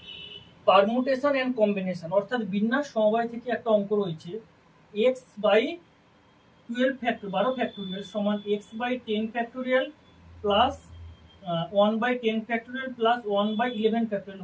permutation and combination অর্থাৎ বিন্যাস সমবায় থেকে একটা অঙ্ক রয়েছে এক্স বাই 12 ফ্যাক্টর 12 ফ্যাক্টোরিয়াল সমান x by 10 factorial plus 1 by 10 factorial plus 1 by 11 factorial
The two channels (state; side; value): identical; both; correlation 1.00